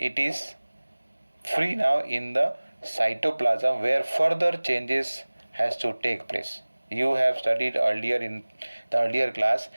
is free now in the cytoplasm where further changes has to take place. You have studied earlier in the earlier class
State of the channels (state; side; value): inverted; both; correlation -1.00